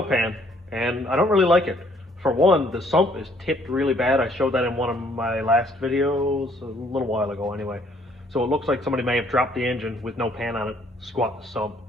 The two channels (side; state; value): both; normal; correlation 0.64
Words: pan and I don't really like it. For one, the sump is tipped really bad. I showed that in one of my last videos, a little while ago anyway. So it looks like somebody may have dropped the engine with no pan on it, squat the sump,